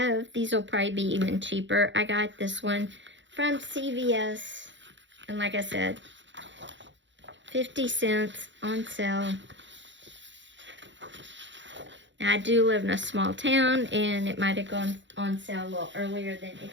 these will probably be even cheaper. I got this one from CVS. And like I said, 50 cents on sale. Now, I do live in a small town, and it might have gone on sale a little earlier than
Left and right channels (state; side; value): late; left; 0.54 ms